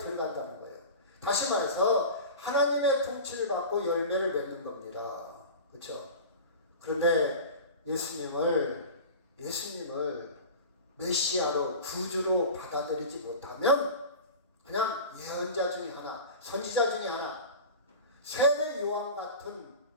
거예요. 다시 말해서 하나님의 통치를 받고 열매를 맺는 겁니다. 그렇죠? 그런데 예수님을 메시아로 구주로 받아들이지 못하면 그냥 예언자 중에 하나, 선지자 중에 하나, 세례 요한 같은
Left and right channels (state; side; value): inverted; both; correlation -0.34